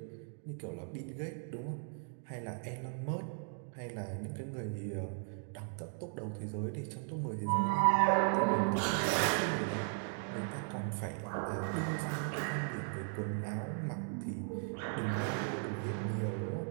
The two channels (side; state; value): left; silent; 53 dB below the other